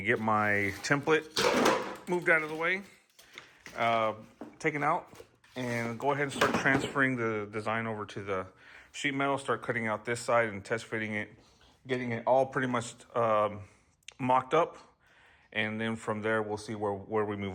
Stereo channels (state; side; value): identical; both; correlation 1.00